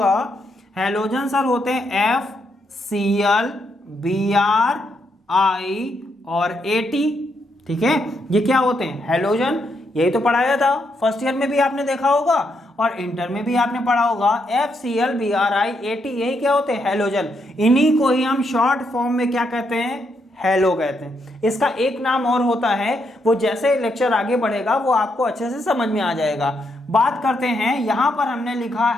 हैलोजन सर होते हैं FCl Br I और At। ठीक है, ये क्या होते हैं, हैलोजन। यही तो पढ़ाया था, फर्स्ट ईयर में भी आपने देखा होगा और इंटर में भी आपने पढ़ा होगा, FCl Br I At, यही क्या होते हैं, हैलोजन। इन्हीं को ही हम शॉर्ट फॉर्म में क्या कहते हैं, हैलो कहते हैं। इसका एक नाम और होता है, वो जैसे लेक्चर आगे बढ़ेगा वो आपको अच्छे से समझ में आ जाएगा। बात करते हैं, यहां पर हमने लिखा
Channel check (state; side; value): normal; both; correlation 0.78